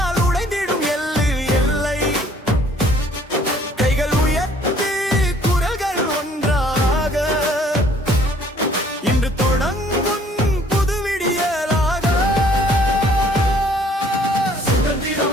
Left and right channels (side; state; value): both; normal; correlation 0.59